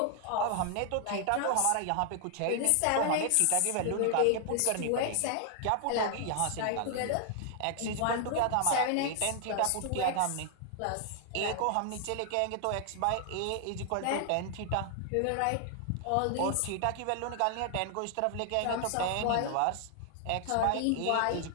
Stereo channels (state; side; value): different; both; correlation 0.00